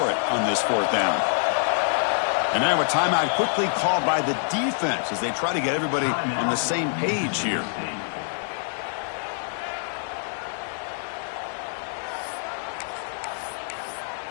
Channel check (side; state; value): right; silent; digital silence